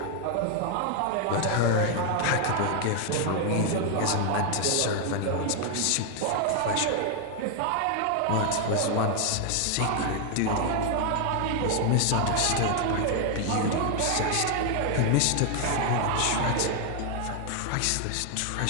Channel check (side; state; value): both; different; correlation 0.00